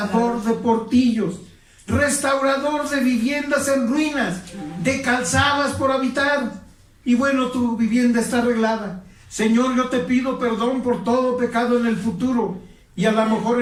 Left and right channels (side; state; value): both; identical; correlation 1.00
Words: de portillos, restaurador de viviendas en ruinas, de calzadas por habitar. Y bueno, tu vivienda está arreglada. Señor, yo te pido perdón por todo pecado en el futuro, y a lo mejor